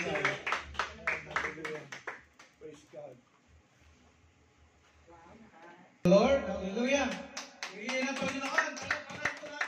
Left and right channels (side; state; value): both; identical; correlation 1.00